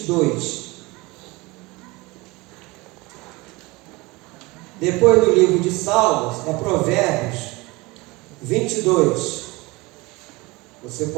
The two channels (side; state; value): left; quieter; 23.4 dB